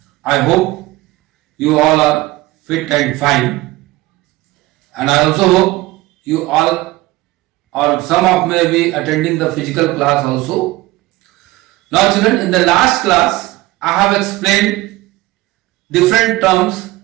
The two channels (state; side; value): quieter; left; 18.7 dB